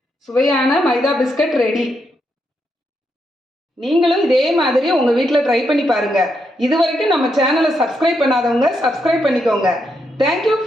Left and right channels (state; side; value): normal; both; correlation 0.80